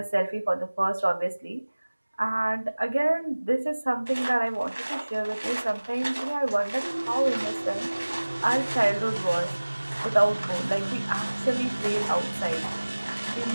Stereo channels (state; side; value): inverted; both; correlation -1.00